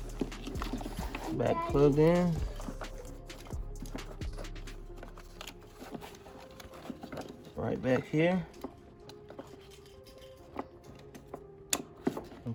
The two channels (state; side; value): identical; both; correlation 1.00